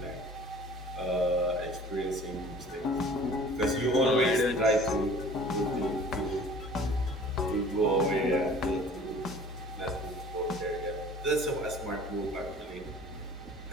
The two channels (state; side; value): normal; both; correlation 0.48